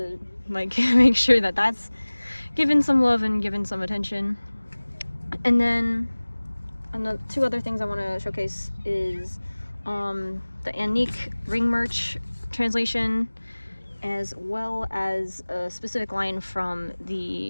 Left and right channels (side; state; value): both; inverted; correlation -1.00